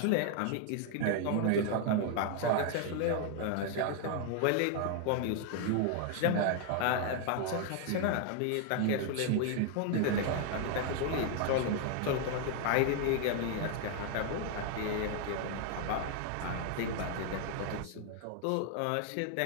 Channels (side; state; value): both; different; correlation 0.00